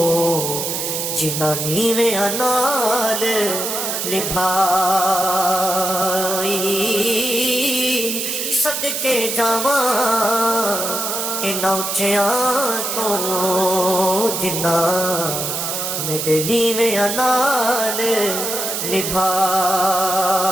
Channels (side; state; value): right; noise; hiss, 2 dB below the sound